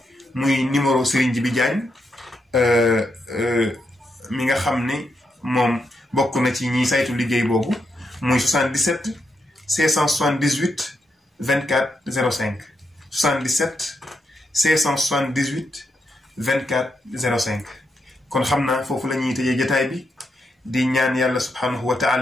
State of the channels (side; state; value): both; normal; correlation 0.83